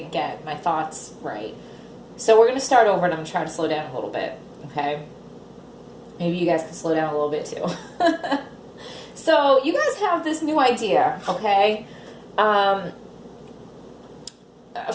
get my thoughts right. So we're going to start over and I'm going to try to slow down a little bit, okay? Maybe you guys can slow down a little bit too. So you guys have this new idea, okay? For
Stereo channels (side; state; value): both; identical; correlation 1.00